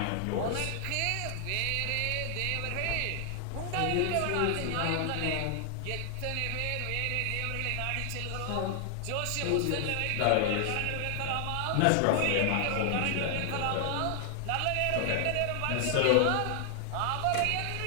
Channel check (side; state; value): both; different; correlation 0.00